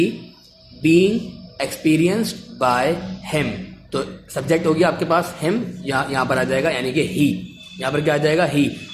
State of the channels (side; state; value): both; identical; correlation 1.00